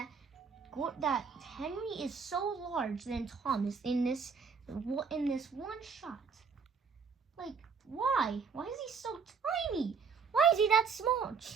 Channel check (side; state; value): left; quieter; 5.7 dB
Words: Henry is so large than Thomas in this one shot. Like, why? Why is he so tiny? Why is he that small?